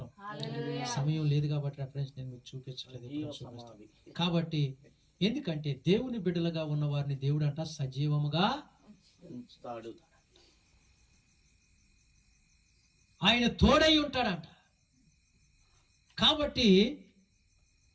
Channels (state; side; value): identical; both; correlation 1.00